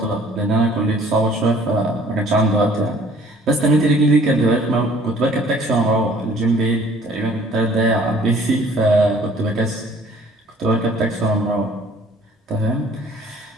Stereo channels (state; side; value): normal; both; correlation 0.55